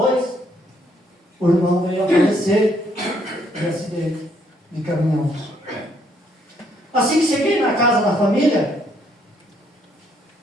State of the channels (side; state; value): both; normal; correlation 0.69